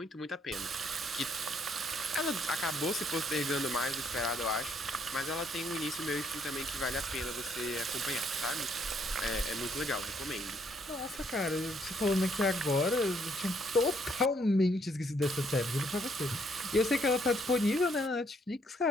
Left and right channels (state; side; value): normal; both; correlation 0.70